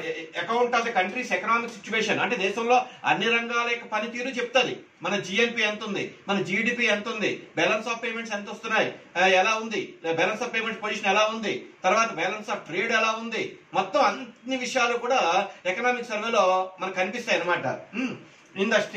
account of the countries economic situation అంటే దేశంలో అన్ని రంగాల యొక్క పనితీరు చెప్తుంది. మన GNP ఎంత ఉంది, మన జీడిపి ఎంత ఉంది, బ్యాలెన్స్ ఆఫ్ పేమెంట్స్ ఎంత వస్తున్నాయి, ఎలా ఉంది, బ్యాలెన్స్ ఆఫ్ పేమెంట్స్ పొజిషన్ ఎలా ఉంది, తర్వాత బ్యాలెన్స్ ఆఫ్ ట్రేడ్ ఎలా ఉంది, మొత్తం అన్ని విషయాలు కూడా ఎకనామిక్ సర్వేలో మనకు కనిపిస్తాయి అన్నమాట. In the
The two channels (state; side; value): identical; both; correlation 1.00